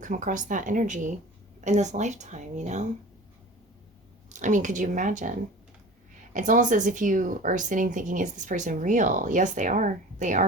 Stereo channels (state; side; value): normal; both; correlation 0.39